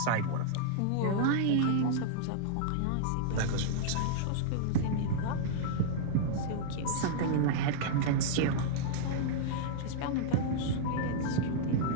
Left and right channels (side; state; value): both; different; correlation -0.02